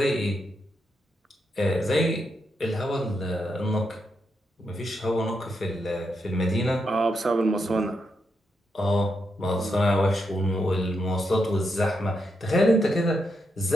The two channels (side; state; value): both; normal; correlation 0.83